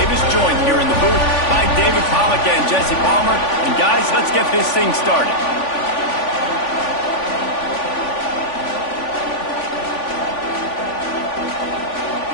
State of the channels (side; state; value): right; late; 3.5 ms